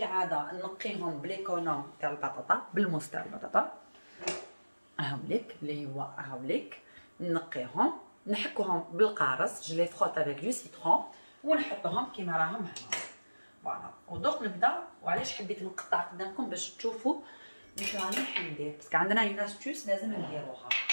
نقيهم بليكونوم تاع البطاطا، بالموس تاع البطاطا هاوليك اللي هو هاوليك، نقيهم نحكوهم بالقارص، جو لي فروت افيك دو سيترون ونحطوهم كيما راهم هنا. فوالا ودوك نبدا. وعلاش حبيت نقطع قدامكم باش تشوفوا واش راني حندير، باسكو عندنا اون استوس لازم نديروها.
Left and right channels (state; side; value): inverted; both; correlation -1.00